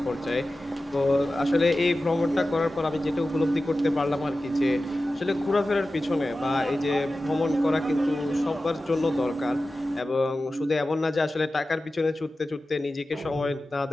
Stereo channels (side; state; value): both; normal; correlation 0.94